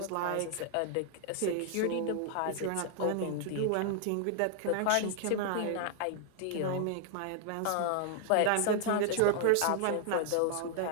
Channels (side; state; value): both; different; correlation 0.00